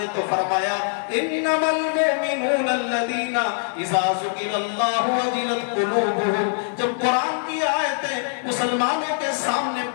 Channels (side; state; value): right; silent; 63 dB below the other